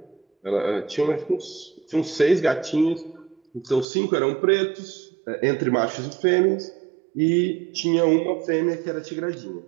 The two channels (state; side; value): drops out; left; at 3.9 s